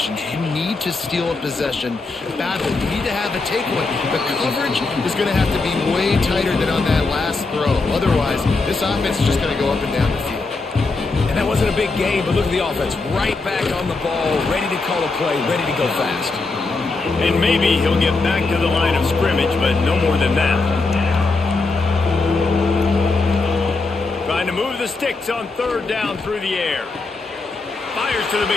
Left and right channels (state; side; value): quieter; right; 3.7 dB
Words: You need to steal a possession badly. You need to have a takeaway. The coverage is going to have to be way tighter than on that last throw. Otherwise, this offense is just going to go up and down the field. And that wasn't a big game, but look at the offense. Right back on the ball, ready to call a play, ready to go fast. And maybe he'll get back to the line of scrimmage, but no more than that. Trying to move the sticks on 3rd down through the air. Fires to the